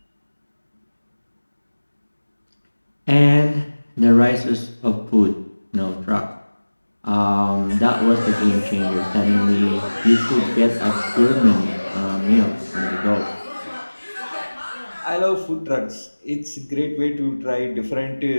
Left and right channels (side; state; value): both; inverted; correlation -1.00